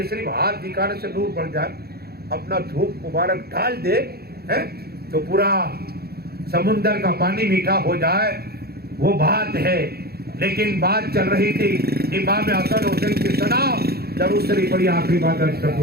صرف ہاتھ دکھانے سے نور پڑ جائے، اپنا دھوپ مبارک ڈال دے تو پورا سمندر کا پانی میٹھا ہو جائے، وہ بات ہے۔ لیکن بات چل رہی تھی امام حسن حسین کی، سنا درود شریف پڑھی، آخری بات عرض کر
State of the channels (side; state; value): left; late; 0.46 ms